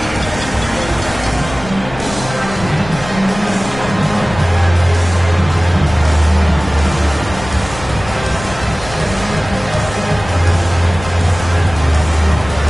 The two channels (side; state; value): left; noise; rumble, 13 dB below the sound